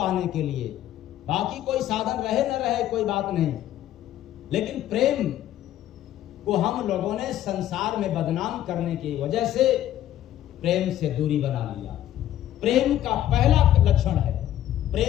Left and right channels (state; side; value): quieter; right; 12.4 dB